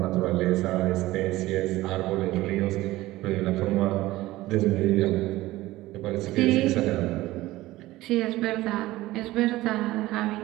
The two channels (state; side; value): quieter; left; 17.5 dB